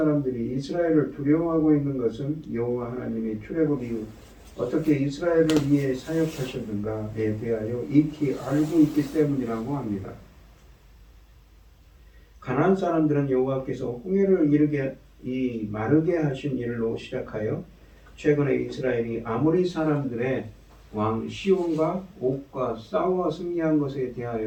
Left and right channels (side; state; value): both; identical; correlation 1.00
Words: 이스라엘을 두려워하고 있는 것은 여호와 하나님이 출애굽 이후 어떻게 이스라엘을 위해 사역하셨는가에 대하여 익히 알고 있기 때문이라고 합니다. 가나안 사람들은 여호와께서 홍해를 마르게 하신 일로 시작하여 최근에 이스라엘이 아모리 사람들의 왕 시온과 옥과 싸워 승리한 것에